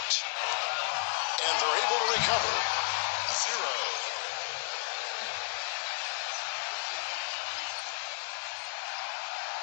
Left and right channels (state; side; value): silent; right; digital silence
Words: And they're able to recover. 0.